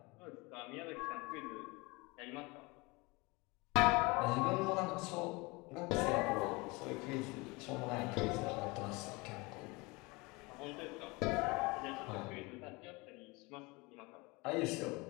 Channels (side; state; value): right; quieter; 25.4 dB